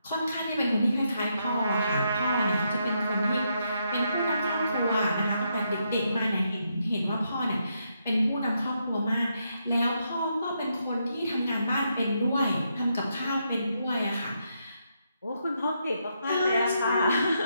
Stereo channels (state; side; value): inverted; both; correlation -0.79